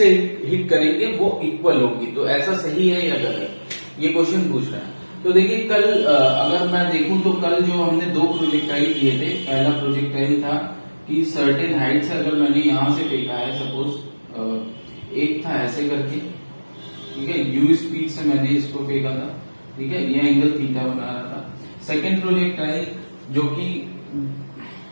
हिट करेंगे वो इक्वल होगी। तो ऐसा सही है या गलत, ये क्वेश्चन पूछ रहा है। तो देखिए कल अगर मैं देखूं तो कल जो हमने दो प्रोजेक्टाइल किए थे, पहला प्रोजेक्टाइल था कि सर्टेन हाइट से अगर मैंने यहां से फेंका है, सपोज एक था ऐसे करके, ठीक है, u स्पीड से मैंने इसको फेंका था, ठीक है, ये एंगल थीटा बना रहा था। सेकेंड प्रोजेक्टाइल जो कि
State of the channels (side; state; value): both; inverted; correlation -1.00